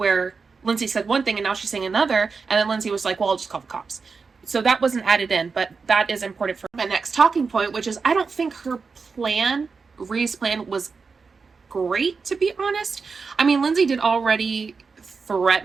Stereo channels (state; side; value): quieter; left; 4.9 dB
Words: Lindsay said one thing and now she's saying another. And then Lindsay was like, well, I'll just call the cops. So that wasn't added in, but that is important for my next talking point, which is I don't think her plan, Ree's plan, was great, to be honest. I mean, Lindsay did already